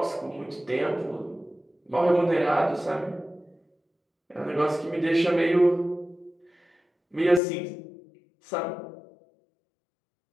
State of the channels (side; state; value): right; drops out; at 7.4 s